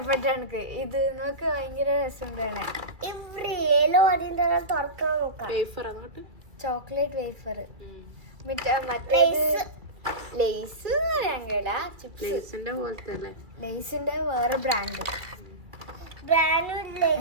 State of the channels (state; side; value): late; left; 2.3 ms